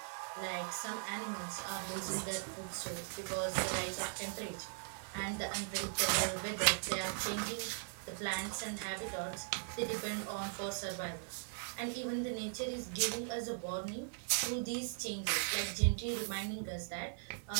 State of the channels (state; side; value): silent; left; 52 dB below the other